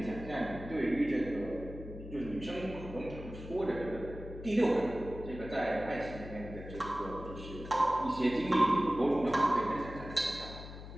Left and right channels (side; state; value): left; noise; hum, 12 dB below the sound